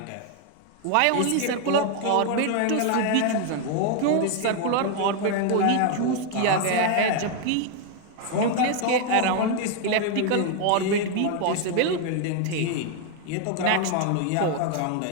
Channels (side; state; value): both; different; correlation 0.00